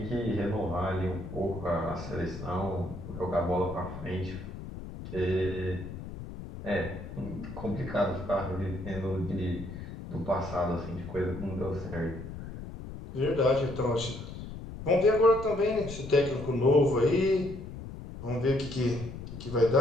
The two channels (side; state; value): left; noise; rumble, 10 dB below the sound